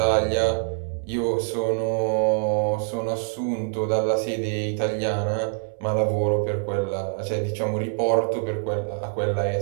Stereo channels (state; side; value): silent; left; digital silence